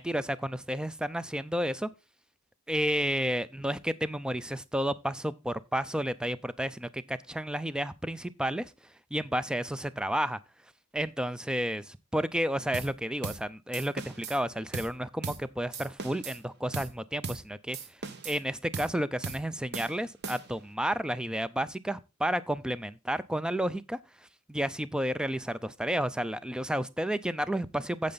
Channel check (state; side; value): normal; both; correlation 0.87